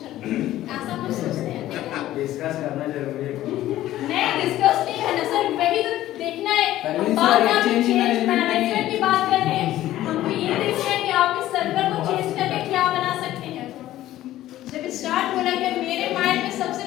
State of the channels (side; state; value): right; quieter; 14.2 dB